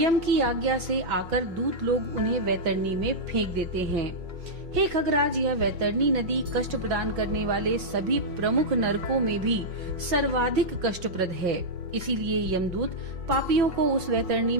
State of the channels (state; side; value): late; left; 5.5 ms